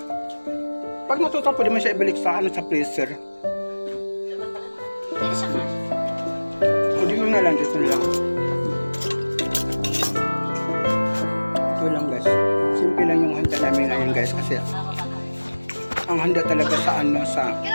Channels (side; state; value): both; inverted; correlation -1.00